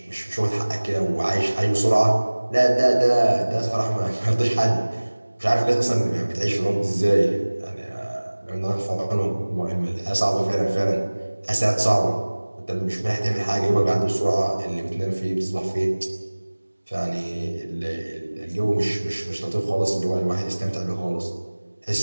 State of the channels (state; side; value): inverted; both; correlation -1.00